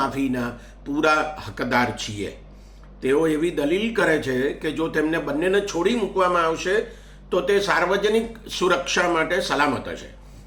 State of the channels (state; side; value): identical; both; correlation 1.00